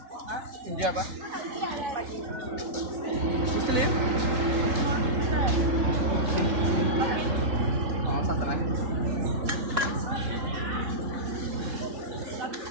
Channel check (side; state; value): left; late; 3.7 ms